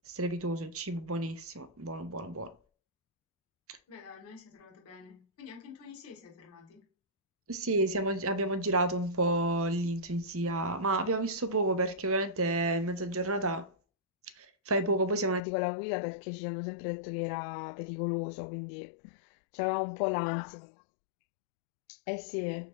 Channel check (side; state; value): right; drops out; at 15.4 s